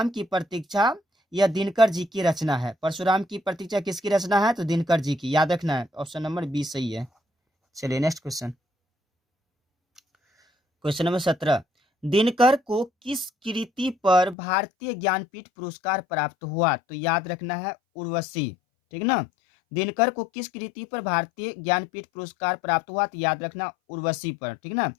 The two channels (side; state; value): right; drops out; at 14.4 s